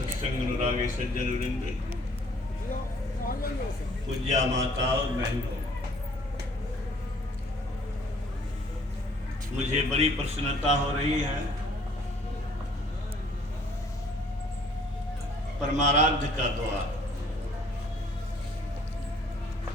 अनुरागी सज्जन वृंद, पूज्या माता और बहनों, मुझे बड़ी प्रसन्नता हो रही है। परमाराध्य का द्वार,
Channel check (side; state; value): both; normal; correlation 0.58